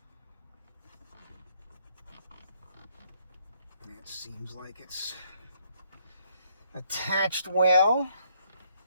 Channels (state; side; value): inverted; both; correlation -0.68